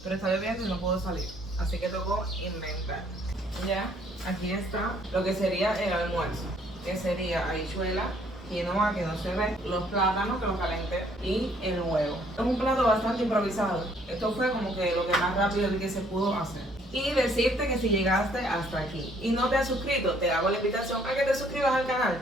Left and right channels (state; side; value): noise; right; hum, 21 dB below the sound